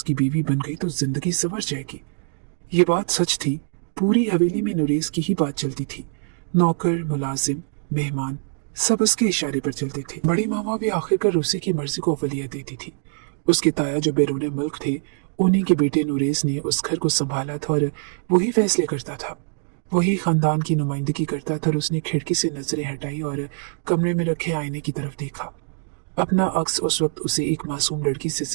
बीवी बन गई तो जिंदगी संवर जाएगी। ये बात सच थी। पूरी हवेली में नुरेज की ही बात चलती थी। नौकर, मुलाजिम, मेहमान सब उसके इशारे पर चलते थे। बड़ी मामा भी आखिरकार उसी की मर्जी को अवलियत देती थी। उसके ताया जो बैरून मुल्क थे, उन्हीं के बेटे नुरेज ने उस घर को संभाला था और वही फैसले करता था, वही खानदान की नुमाइंदगी करता था। और उसने खिड़की से नजरें हटाई और कमरे में रखे आईने की तरफ देखा। अपना अक्स उस वक्त उसे एक मासूम लड़की से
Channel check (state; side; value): silent; left; digital silence